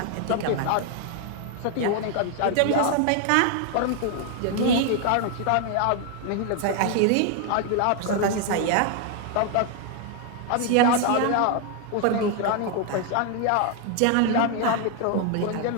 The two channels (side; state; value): both; different; correlation 0.00